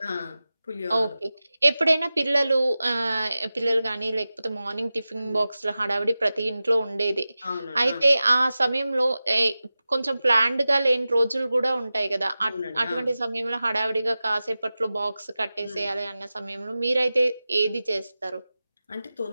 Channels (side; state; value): both; inverted; correlation -0.95